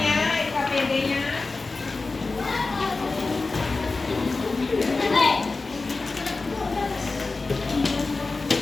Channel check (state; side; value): quieter; right; 3.7 dB